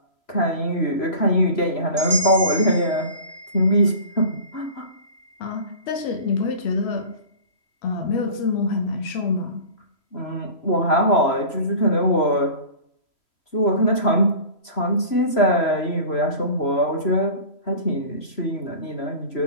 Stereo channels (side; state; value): right; late; 3.0 ms